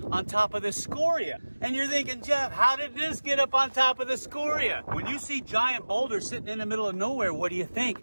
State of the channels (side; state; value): both; inverted; correlation -1.00